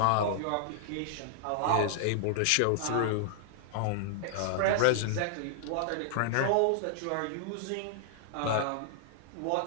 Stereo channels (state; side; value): different; both; correlation -0.01